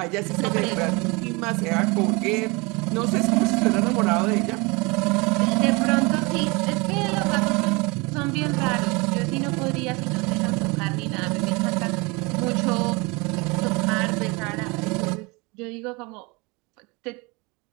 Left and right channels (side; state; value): left; quieter; 26.9 dB